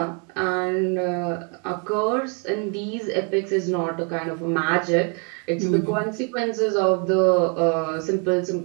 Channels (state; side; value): quieter; left; 37.4 dB